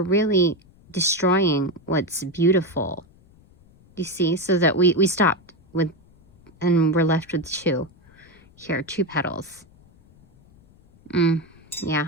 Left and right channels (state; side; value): noise; left; rumble, 28 dB below the sound